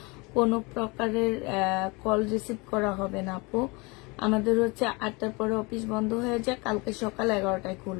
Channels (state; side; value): quieter; right; 26.9 dB